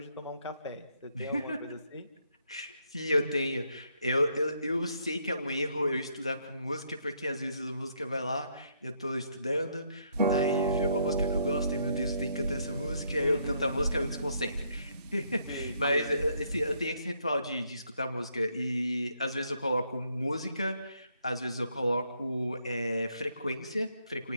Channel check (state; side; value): inverted; both; correlation -0.72